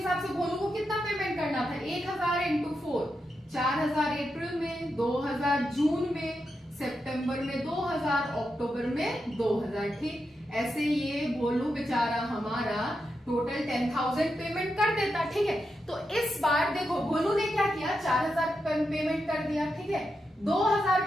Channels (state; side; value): normal; both; correlation 0.86